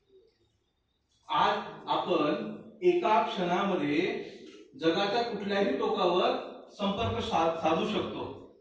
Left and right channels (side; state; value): both; identical; correlation 1.00